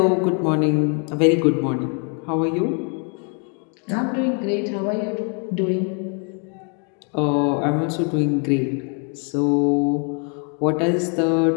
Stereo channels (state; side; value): quieter; right; 39.3 dB